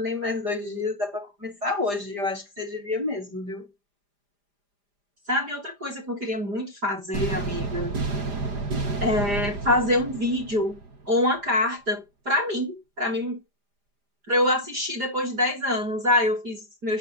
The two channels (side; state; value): left; late; 4.9 ms